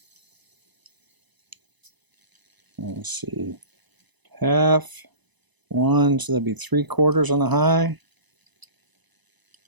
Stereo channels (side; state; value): left; late; 1.0 ms